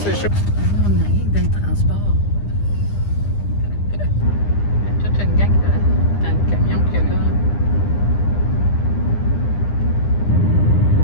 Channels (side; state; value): right; late; 9.9 ms